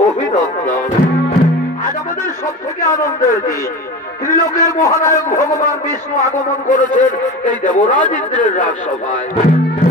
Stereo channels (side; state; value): both; normal; correlation 0.30